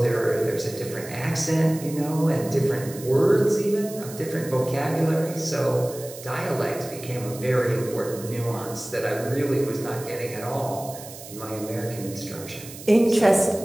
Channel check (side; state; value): right; noise; hiss, 15 dB below the sound